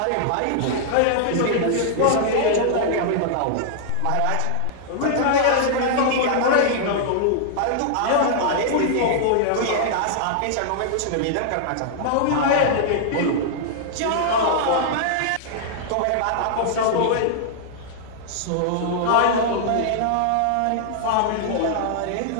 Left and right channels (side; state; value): both; different; correlation -0.01